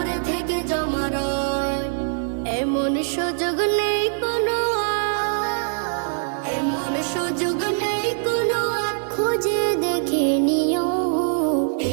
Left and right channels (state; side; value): silent; left; digital silence